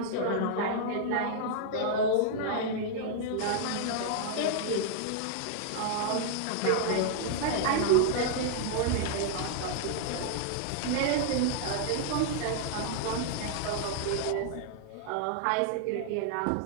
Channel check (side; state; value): both; different; correlation -0.01